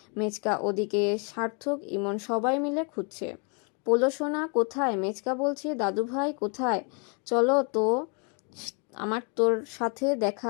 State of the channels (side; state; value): right; quieter; 36.6 dB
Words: মেচকা, ওদিকে সার্থক, ইমন সবাই মিলে খুঁজছে। পোলো সোনা কোথায়? মেচকা বলছে, দাদু ভাই কোথায়? চলো তো, আমার তোর সাথে